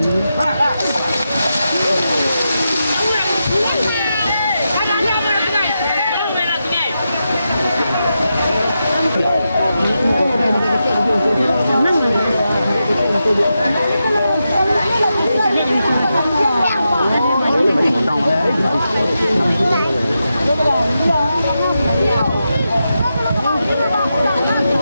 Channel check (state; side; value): inverted; both; correlation -0.88